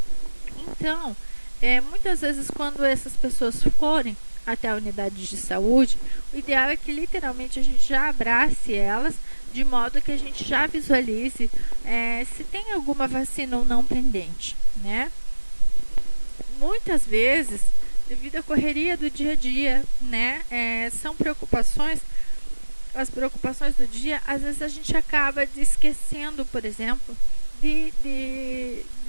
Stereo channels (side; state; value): both; inverted; correlation -1.00